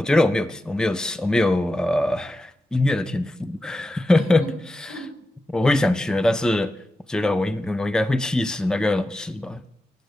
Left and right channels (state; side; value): normal; both; correlation 0.91